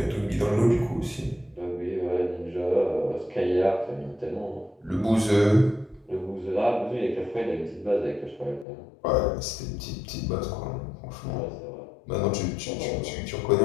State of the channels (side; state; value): right; drops out; at 8.7 s